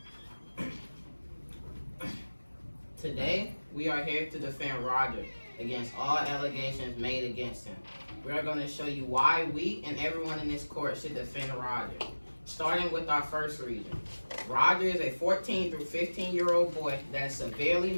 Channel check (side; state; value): both; inverted; correlation -1.00